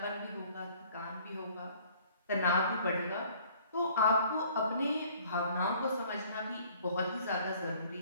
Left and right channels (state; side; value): inverted; both; correlation -0.56